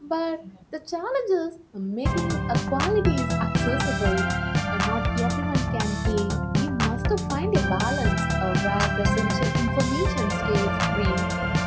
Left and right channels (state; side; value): identical; both; correlation 1.00